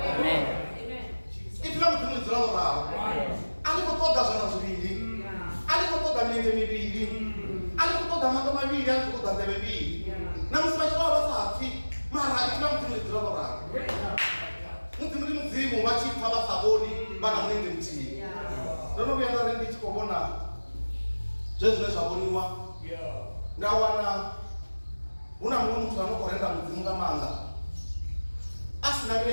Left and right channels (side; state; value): both; inverted; correlation -1.00